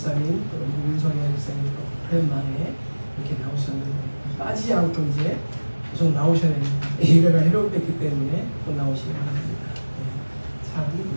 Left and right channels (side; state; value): both; inverted; correlation -1.00